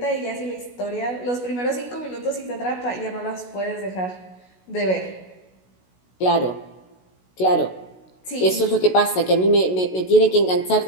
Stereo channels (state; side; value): late; right; 16 ms